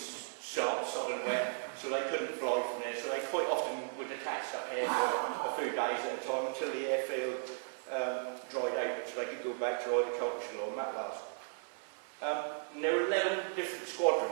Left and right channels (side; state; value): left; silent; 54 dB below the other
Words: wet, so they couldn't fly from there, so they quite often would attach up here for a few days at a time until the airfield dried out, so they could go back to either Culture or Matlas. And there were 11 different